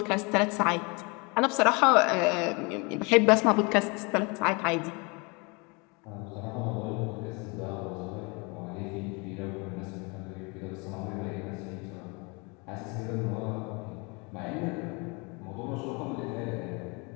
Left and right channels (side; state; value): right; quieter; 29.8 dB